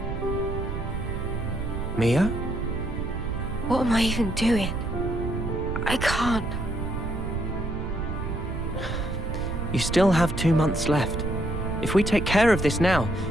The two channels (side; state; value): right; noise; rumble, 4 dB below the sound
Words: Mia? What am I even doing? I can't. You still have 2 months left. If we take care of this now,